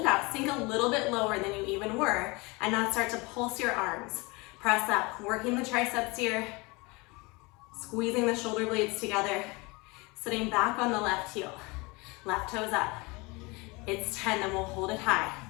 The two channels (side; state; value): right; quieter; 25.8 dB